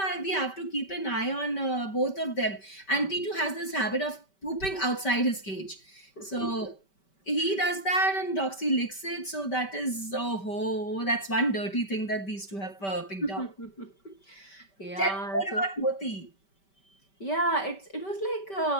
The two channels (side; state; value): right; late; 5.2 ms